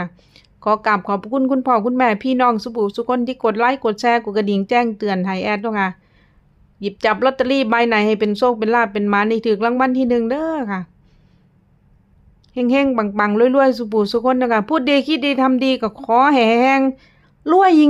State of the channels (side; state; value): both; identical; correlation 1.00